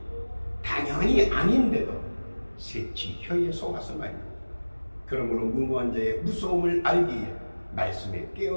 당연히 아닌데도 새치 혀에 속아서 말입니다. 그러므로 무모한 자의 무서움을 알기에 말씀에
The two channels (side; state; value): both; inverted; correlation -1.00